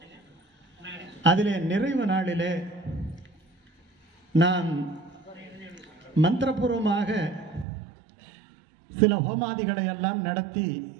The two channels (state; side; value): drops out; left; at 7.7 s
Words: அதிலே நிறைவு நாளிலே நாம் மந்திரபூர்வமாக சில ஹோமாதிகளை எல்லாம் நடத்தி